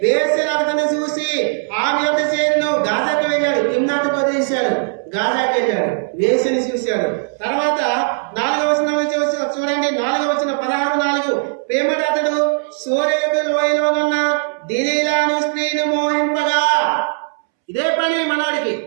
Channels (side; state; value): left; silent; 67 dB below the other